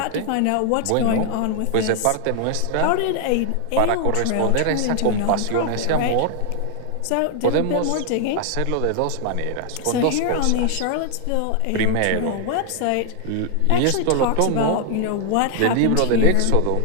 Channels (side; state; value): both; different; correlation 0.00